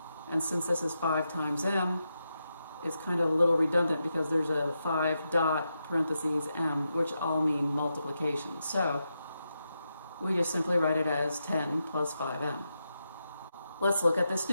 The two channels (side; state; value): both; inverted; correlation -0.86